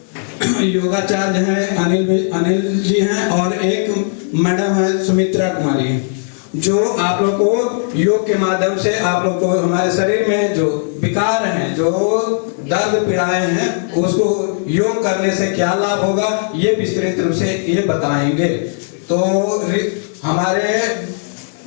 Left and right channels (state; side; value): silent; right; digital silence